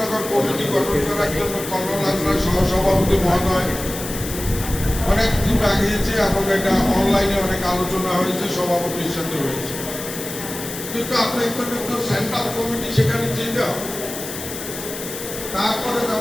কমিটি গঠন করার জন্য কল্লোল হাজরা সহসভাপতি মহোদয় অনেক দূর আগিয়েছে এবং এটা অনলাইনে অনেক আলোচনা হয়েছে, সভাপতির সাথে হয়েছে। কিন্তু আপনার তো সেন্ট্রাল কমিটি সেখানে যেতে হবে। তারপরে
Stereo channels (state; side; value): noise; left; hiss, 9 dB below the sound